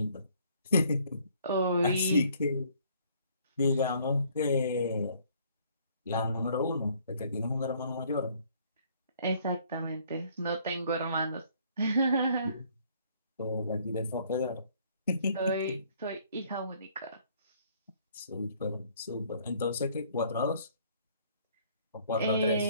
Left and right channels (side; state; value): both; inverted; correlation -0.61